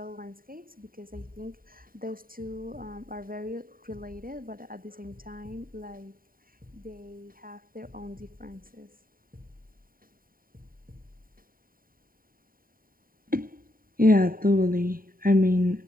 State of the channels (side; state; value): left; late; 0.41 ms